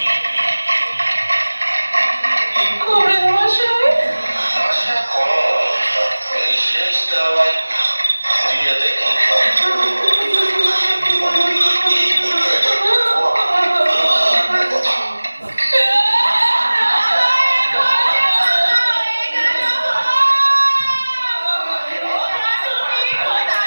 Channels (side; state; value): both; inverted; correlation -1.00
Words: কমরেড মশাই, এই শেষ দাওয়াই দিয়ে দেখি।